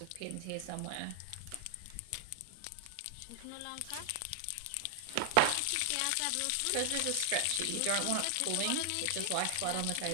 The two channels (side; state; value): both; different; correlation 0.00